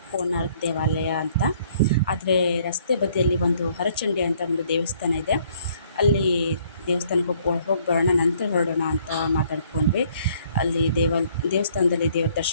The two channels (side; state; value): both; inverted; correlation -0.63